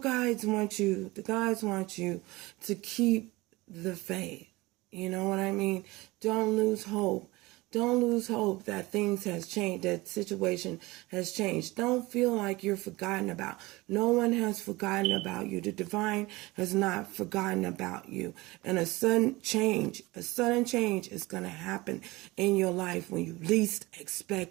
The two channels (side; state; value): left; quieter; 21.5 dB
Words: want you to keep the faith. You know what I mean? Don't lose hope. Don't lose hope that things has changed, that situation has changed. Don't feel like you're forgotten about. No one has forgotten about you. The divine has not forgotten about you. And a sudden change is going to happen in your life when you least